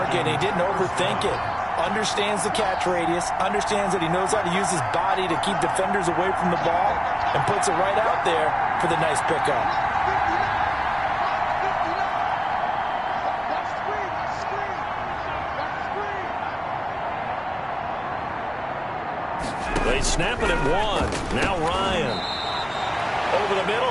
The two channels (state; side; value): identical; both; correlation 1.00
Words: He didn't overthink it. Understands the catch radius. Understands that he knows how to use his body to keep defenders away from the ball. And puts it right out there for the nice pickup. They snap it at 1. Now Ryan. Over the